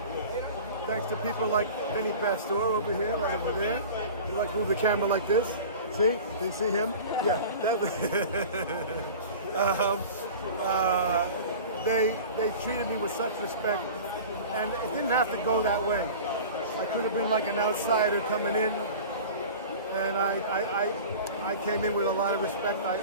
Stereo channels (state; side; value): inverted; both; correlation -0.38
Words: Thanks to people like Benny Pastor over here, right over there. You like move the camera like this. See? Do you see him? Yeah. They treated me with such respect, and it didn't have to go that way. I could have been like an outsider coming in, and I came in with a lot of respect.